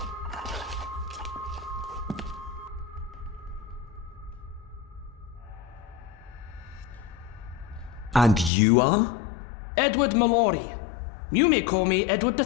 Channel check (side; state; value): right; drops out; at 8.5 s